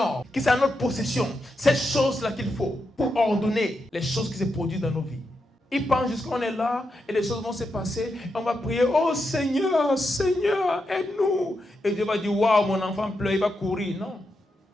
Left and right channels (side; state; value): both; normal; correlation 0.85